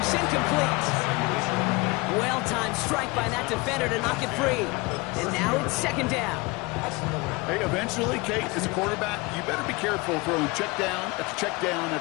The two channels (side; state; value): right; quieter; 24.6 dB